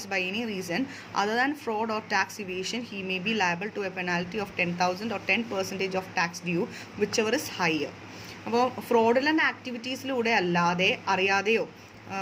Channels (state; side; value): identical; both; correlation 1.00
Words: by any reason other than fraud or tax evasion, he may be liable to a penalty of 10,000 or 10% of tax due, whichever is higher. അപ്പോൾ fraudulent ആക്ടിവിറ്റീസിലൂടെ അല്ലാതെ അറിയാതെയോ